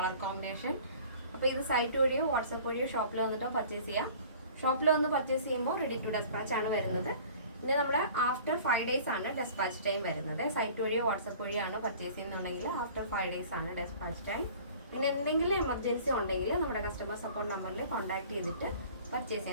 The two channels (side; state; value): both; inverted; correlation -0.47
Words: കോമ്പിനേഷൻ. അപ്പോൾ ഇത് സൈറ്റ് വഴിയോ വാട്സപ്പ് വഴിയോ ഷോപ്പിൽ വന്നിട്ടോ പർച്ചേസ് ചെയ്യാം. ഷോപ്പിൽ വന്ന് പർച്ചേസ് ചെയ്യുമ്പോൾ റെഡി ടു ഡെസ്പാച്ച് ആണ് വരുന്നത്. പിന്നെ നമ്മുടെ ആഫ്റ്റർ 5 days ആണ് ഡെസ്പാച്ച് ടൈം വരുന്നത്. സൈറ്റ് വഴിയോ വാട്സപ്പ് വഴിയാണ് പർച്ചേസ് ചെയ്യുന്നുണ്ടെങ്കിൽ ആഫ്റ്റർ 5 days ആണ് ഡെസ്പാച്ച് ടൈം. പിന്നെ എന്തെങ്കിലും എമർജൻസി ഉണ്ടെങ്കിൽ നമ്മുടെ കസ്റ്റമർ സപ്പോർട്ട് നമ്പറിൽ കോൺടാക്ട് ചെയ്തിട്ട് പർച്ചേസ്